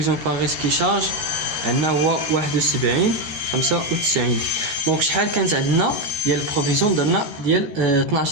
بار ريسك شارج عندنا هو 71 95. دونك شحال كانت عندنا ديال البروفيزيون؟ درنا ديال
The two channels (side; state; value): left; late; 13 ms